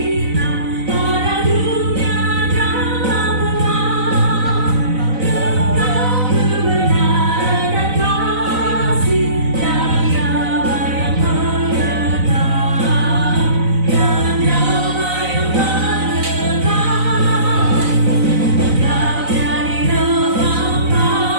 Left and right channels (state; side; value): late; left; 4.0 ms